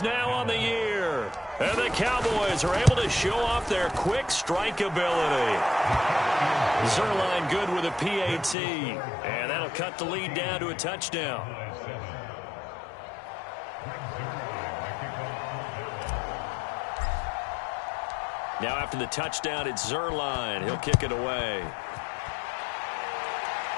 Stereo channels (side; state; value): right; drops out; at 8.6 s